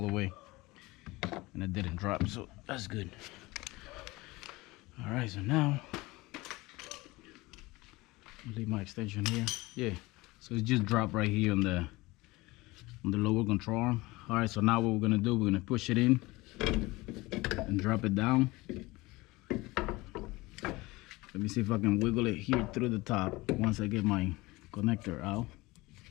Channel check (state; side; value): quieter; right; 21.5 dB